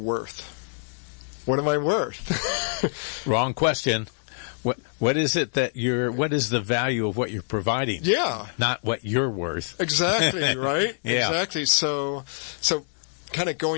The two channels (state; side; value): silent; right; digital silence